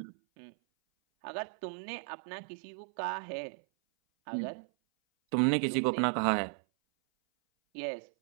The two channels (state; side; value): silent; left; 55 dB below the other